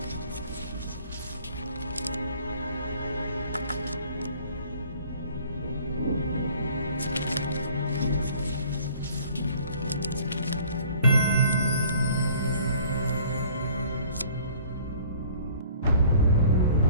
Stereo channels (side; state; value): both; inverted; correlation -0.53